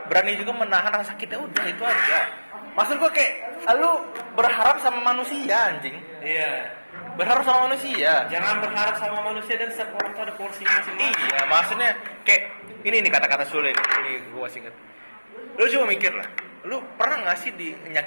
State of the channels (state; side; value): inverted; both; correlation -1.00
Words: berani juga menahan rasa sakitnya, udah itu aja. Maksud gua kayak lu berharap sama manusia, anjing. Iya. Berharap sama manusia. Jangan berharap sama manusia, dan setiap orang itu ada porsinya masing-masing. Iya, maksudnya kayak ini nih kata-kata sulit. Ini gua masih inget. Lu coba mikir lah. Lu pernah nggak sih